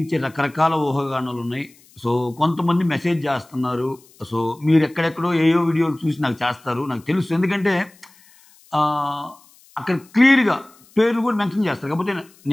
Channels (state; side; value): noise; left; hiss, 28 dB below the sound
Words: రకరకాల ఊహాగానాలు ఉన్నాయి. సో కొంతమంది మెసేజ్ చేస్తున్నారు. సో మీరు ఎక్కడెక్కడో ఏయో వీడియోలు చూసి నాకు చేస్తారు, నాకు తెలుసు. ఎందుకంటే అక్కడ క్లియర్గా పేర్లు కూడా మెన్షన్ చేస్తారు. కాకపోతే